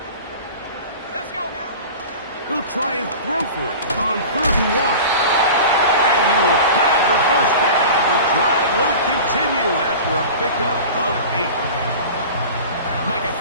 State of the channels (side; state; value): both; inverted; correlation -0.36